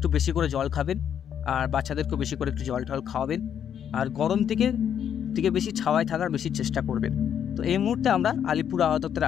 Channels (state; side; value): quieter; right; 8.9 dB